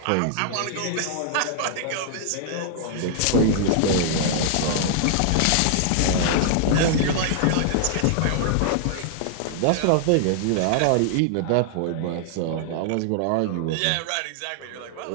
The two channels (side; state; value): both; different; correlation -0.01